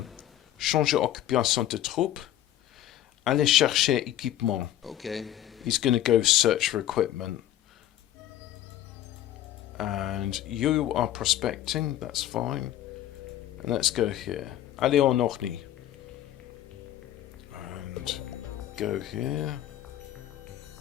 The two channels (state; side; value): quieter; right; 12.5 dB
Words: Changer occupation de troupe. Aller chercher équipement. Okay. He's going to go search for equipment. And you are prospecting, that's fine. And let's go here. Aller en Orny. And go here.